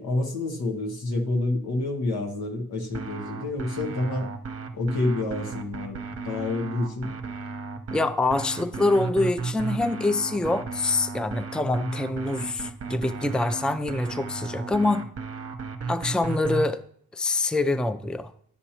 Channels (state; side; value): normal; both; correlation 0.70